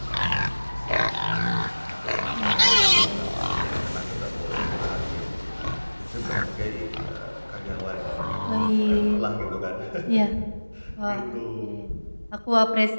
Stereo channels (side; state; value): both; inverted; correlation -1.00